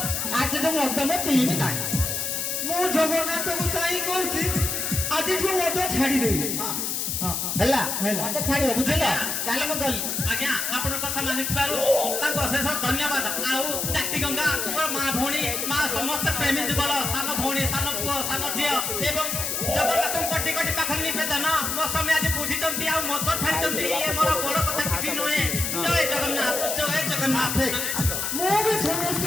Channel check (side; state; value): left; noise; hiss, 1 dB below the sound